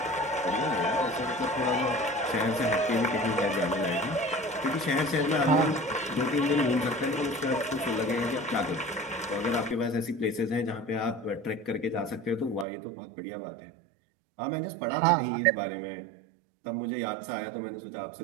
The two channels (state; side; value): drops out; left; at 12.7 s